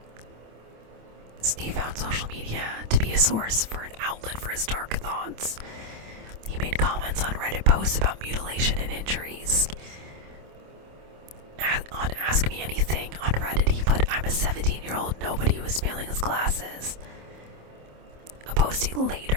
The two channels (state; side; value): late; left; 27 ms